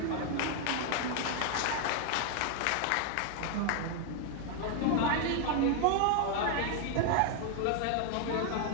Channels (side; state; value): both; different; correlation 0.00